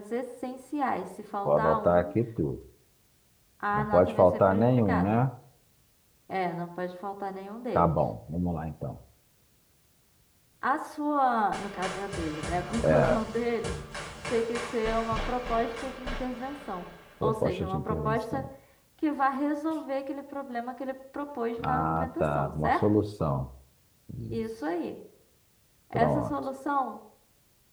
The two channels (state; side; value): identical; both; correlation 1.00